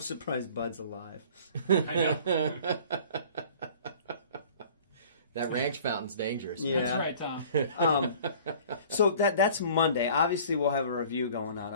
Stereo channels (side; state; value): both; inverted; correlation -0.48